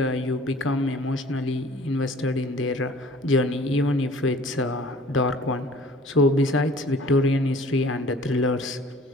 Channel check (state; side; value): normal; both; correlation 0.50